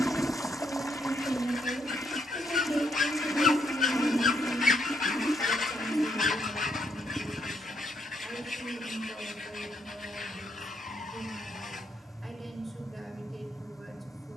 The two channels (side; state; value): both; normal; correlation 0.75